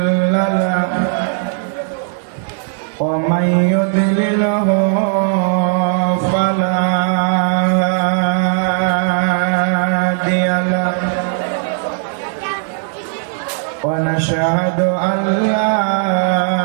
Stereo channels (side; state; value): left; silent; digital silence